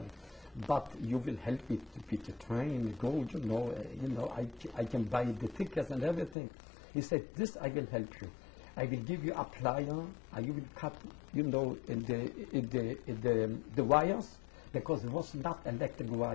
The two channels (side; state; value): right; drops out; at 6.4 s